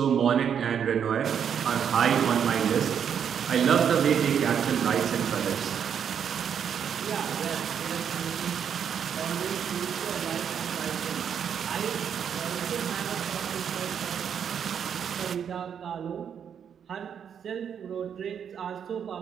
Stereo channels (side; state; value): left; quieter; 8.0 dB